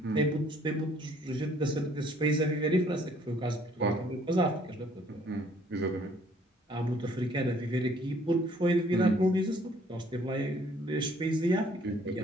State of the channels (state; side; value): normal; both; correlation 0.61